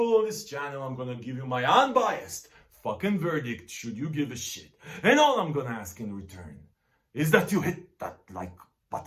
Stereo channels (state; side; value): identical; both; correlation 1.00